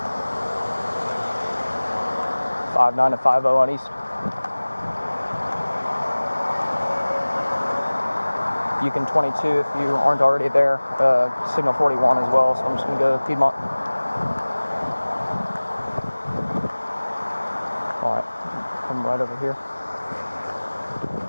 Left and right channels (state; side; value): inverted; both; correlation -1.00